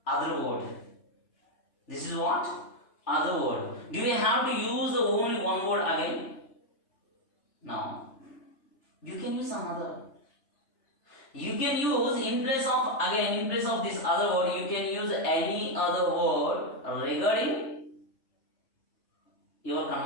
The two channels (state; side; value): late; right; 3.3 ms